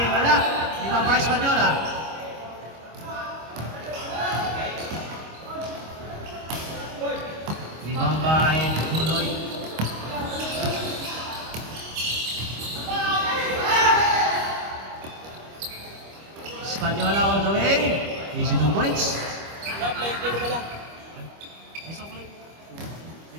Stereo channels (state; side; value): late; left; 25 ms